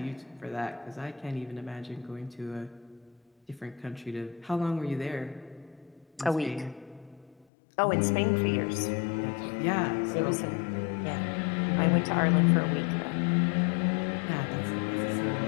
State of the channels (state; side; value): drops out; right; at 7.5 s